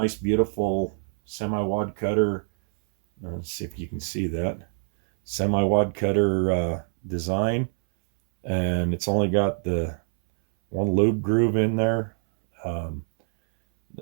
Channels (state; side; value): silent; left; 62 dB below the other